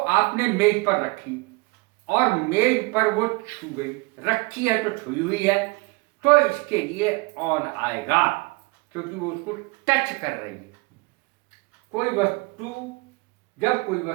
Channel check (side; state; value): left; quieter; 27.0 dB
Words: मेज पर रखी और मेज पर वो छू गई, रखी है तो छुई हुई है, तो इसके लिए ऑन आएगा क्योंकि वो उसको टच कर रही है। जब कोई